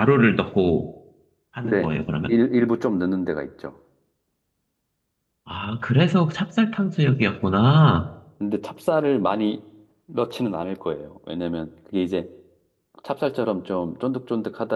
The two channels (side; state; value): both; identical; correlation 1.00